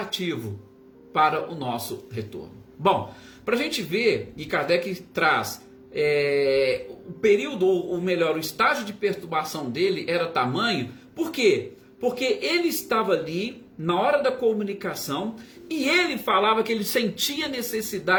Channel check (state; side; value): identical; both; correlation 1.00